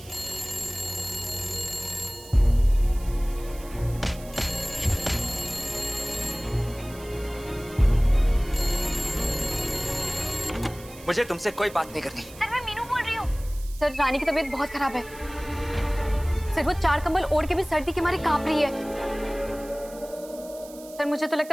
मुझे तुमसे कोई बात नहीं करनी। सर मैं मीनू बोल रही हूँ। सर रानी की तबीयत बहुत खराब है। सर वो 4 कंबल ओढ़ के भी सर्दी के मारे कांप रही है। सर मुझे तो लगता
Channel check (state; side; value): noise; right; hiss, 19 dB below the sound